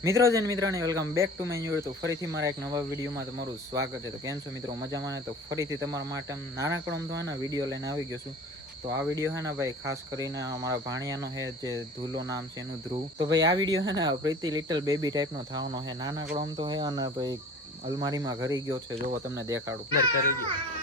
મિત્રો જન મિત્રોને welcome back to my new. તો ફરીથી મારા એક નવા વિડીયોમાં તમારું સ્વાગત છે. તો કેમ છો મિત્રો, મજામાં ને? તો ફરીથી તમારા માટે નાનકડો તો હે ને વિડીયો લઈને આવી ગયો છું. તો આ વિડીયો હે ને ભાઈ ખાસ કરીને અમારા ભાણિયાનો હે, જે ધૂલો નામ છે એનું, ધ્રુવ. તો ભાઈ આ વિડીયો હે ને પ્રીતિ લિટલ બેબી ટાઈપનો થવાનો હે. નાનકડો આમ તો હે અને ભાઈ અલમારીમાં ઘરી ગયો છે. જોવો તમને દેખાડું. કરી ગયો.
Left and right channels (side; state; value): both; normal; correlation 0.42